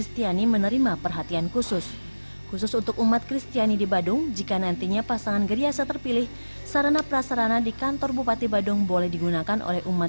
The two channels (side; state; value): both; inverted; correlation -1.00